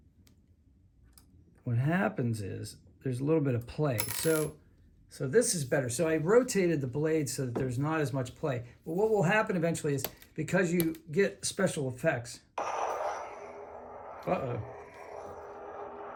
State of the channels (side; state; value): both; identical; correlation 1.00